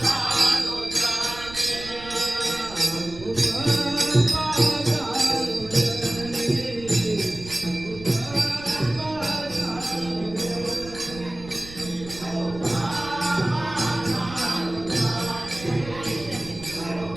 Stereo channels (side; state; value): right; noise; rumble, 15 dB below the sound